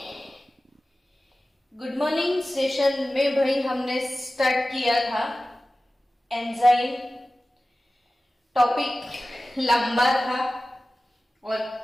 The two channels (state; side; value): normal; both; correlation 0.96